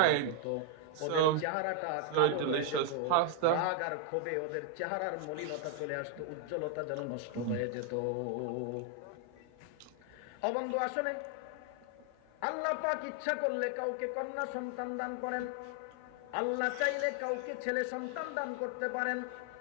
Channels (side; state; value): both; different; correlation 0.00